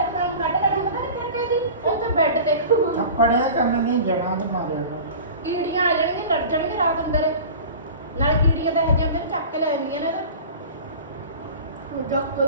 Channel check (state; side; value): inverted; both; correlation -0.38